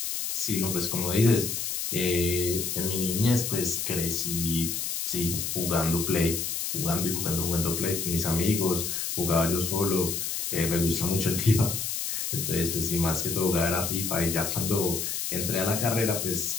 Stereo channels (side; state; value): left; noise; hiss, 2 dB below the sound